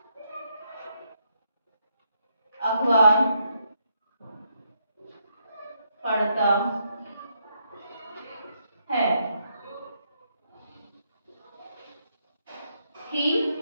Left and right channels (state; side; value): inverted; both; correlation -0.77